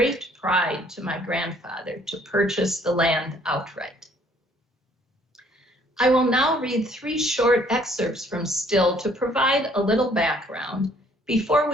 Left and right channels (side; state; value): both; normal; correlation 0.61